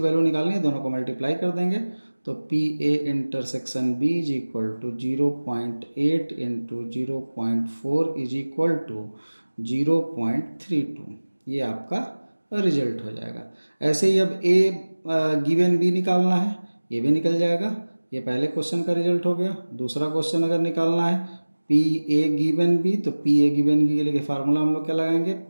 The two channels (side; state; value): both; inverted; correlation -1.00